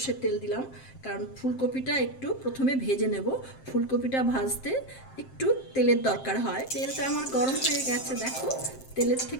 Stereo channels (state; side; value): late; right; 7.6 ms